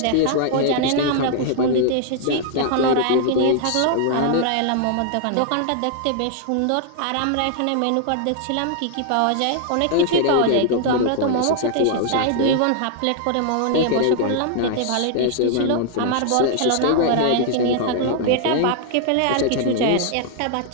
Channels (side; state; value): both; different; correlation -0.01